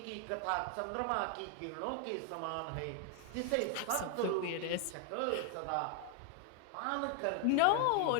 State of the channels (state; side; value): different; both; correlation 0.00